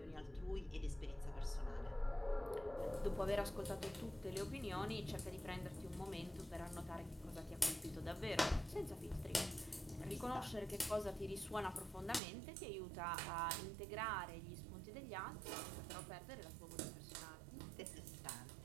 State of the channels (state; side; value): drops out; left; at 12.2 s